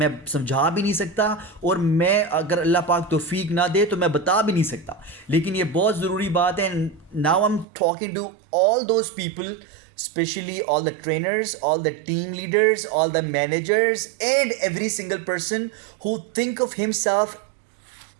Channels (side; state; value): left; drops out; at 7.7 s